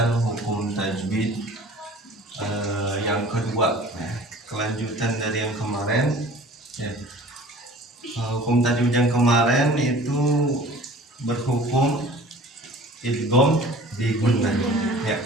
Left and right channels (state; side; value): normal; both; correlation 0.46